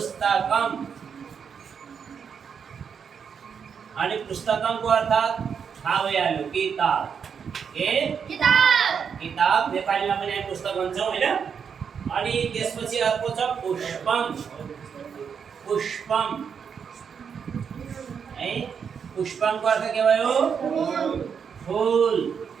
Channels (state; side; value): quieter; left; 6.9 dB